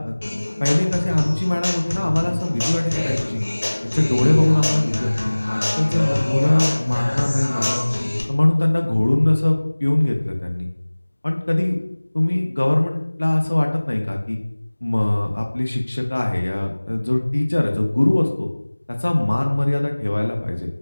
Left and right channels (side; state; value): both; inverted; correlation -1.00